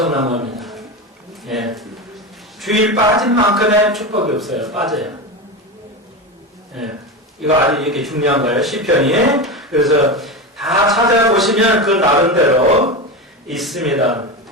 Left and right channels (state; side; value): normal; both; correlation 0.20